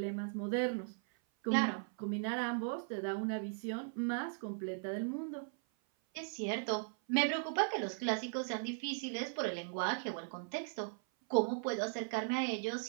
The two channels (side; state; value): left; silent; 52 dB below the other